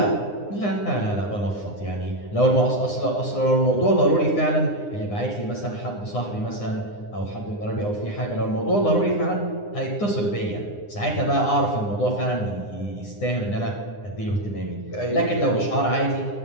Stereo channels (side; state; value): right; late; 9.8 ms